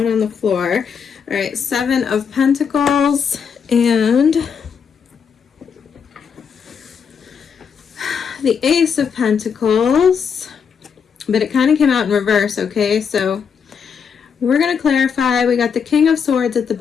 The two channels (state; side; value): quieter; right; 6.7 dB